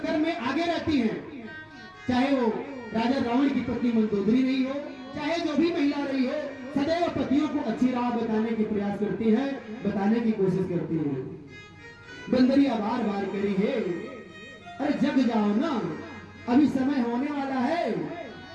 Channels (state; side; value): identical; both; correlation 1.00